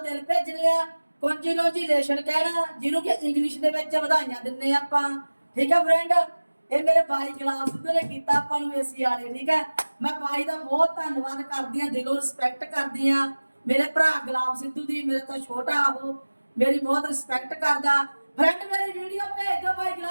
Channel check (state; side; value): inverted; both; correlation -1.00